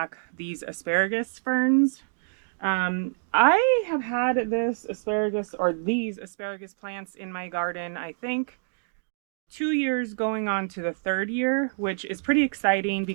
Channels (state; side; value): silent; left; digital silence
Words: these asparagus ferns. I have had this asparagus or these asparagus plants in my garden, I think 2 years going on to the third year, which is pretty exciting